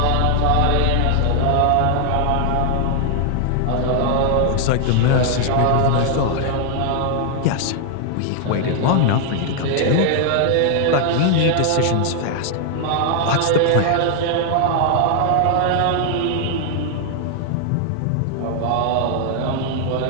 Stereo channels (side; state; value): both; different; correlation 0.00